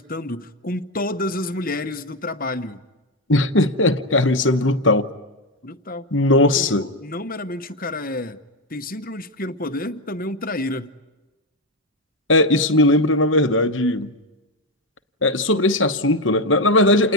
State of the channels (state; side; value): normal; both; correlation 0.09